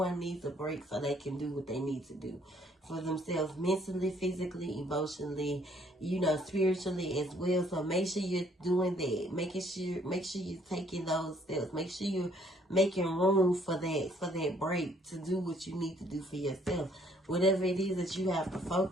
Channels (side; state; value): both; normal; correlation 0.63